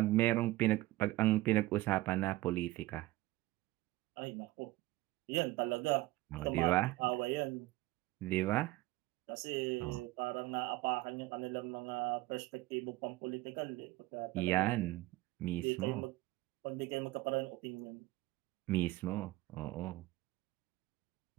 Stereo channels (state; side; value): quieter; left; 18.2 dB